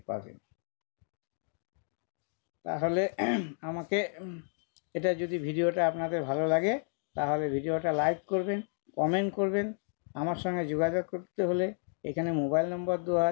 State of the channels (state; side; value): silent; right; 56 dB below the other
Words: পাবেন। তাহলে আমাকে এটা যদি ভিডিওটা আপনাদের ভালো লাগে, তাহলে ভিডিওটা লাইক করবেন, কমেন্ট করবেন। আমার সঙ্গে যোগাযোগ করতে হলে এখানে মোবাইল নম্বর দেওয়া